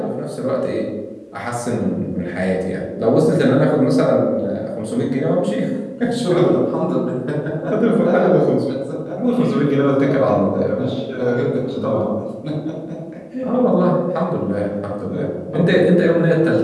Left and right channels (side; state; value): both; identical; correlation 1.00